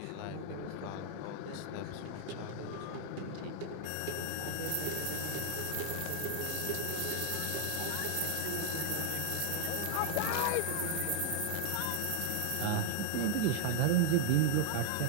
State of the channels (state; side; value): different; both; correlation 0.00